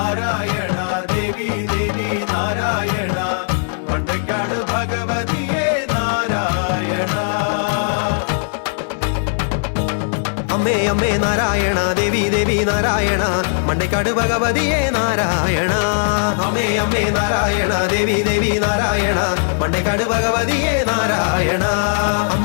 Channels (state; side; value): silent; right; digital silence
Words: ദേവി ദേവി നാരായണ മണ്ടക്കാട് ഭഗവതിയേ നാരായണ அம்மே அம்மே நாராயணா தேவி தேவி நாராயணா மண்டைக்காடு பகவதியே நாராயணா அம்மே அம்மே நாராயணா தேவி தேவி நாராயணா மண்டைக்காடு பகவதியே நாராயணா